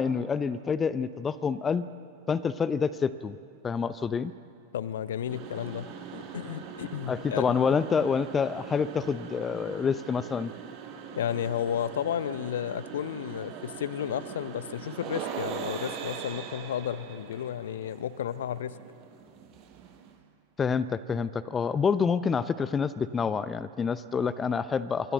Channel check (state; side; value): quieter; right; 5.7 dB